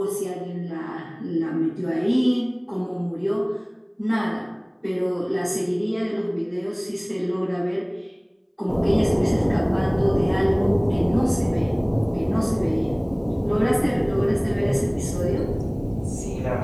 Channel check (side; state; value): both; identical; correlation 1.00